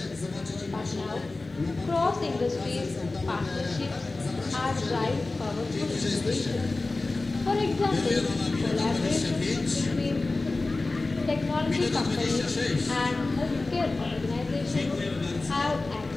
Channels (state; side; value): quieter; right; 3.3 dB